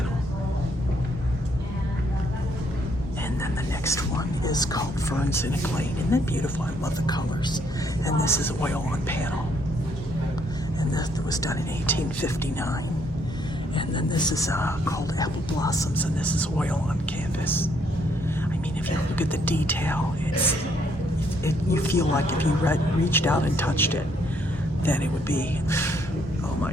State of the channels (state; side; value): normal; both; correlation 0.70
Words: And then the next one is called Ferns in a Glade. Isn't that beautiful? I love the colors. And this is oil on panel. And this was done in 1859. And then this is called Apple Blossoms, and this is oil on canvas. I mean, if you look at the detail, you feel like if you reached out and touched it, then it would be, oh